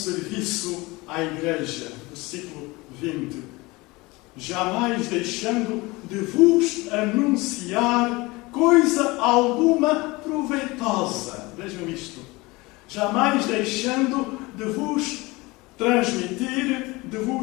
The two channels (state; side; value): quieter; right; 22.9 dB